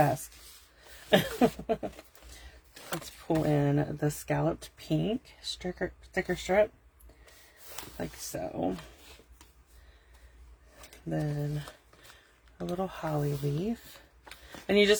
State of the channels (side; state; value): both; identical; correlation 1.00